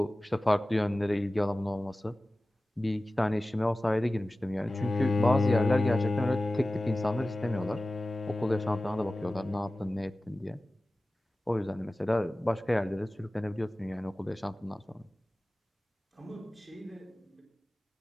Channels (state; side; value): normal; both; correlation 0.96